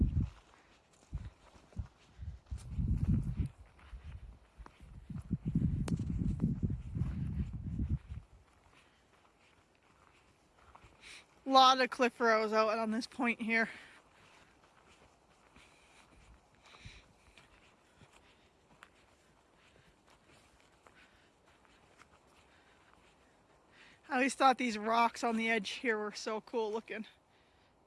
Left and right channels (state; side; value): identical; both; correlation 1.00